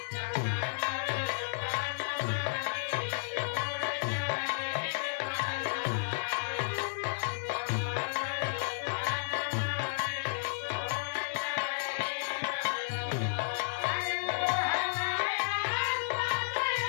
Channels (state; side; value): silent; right; digital silence